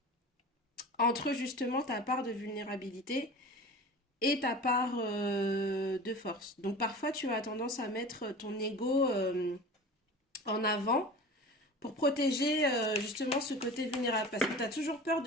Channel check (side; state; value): both; normal; correlation 0.36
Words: entre justement ta part de vulnérabilité et ta part de force. Donc parfois tu as tendance à mettre ton ego en avant pour protéger justement ce côté vulnérable parce que tu as toujours peur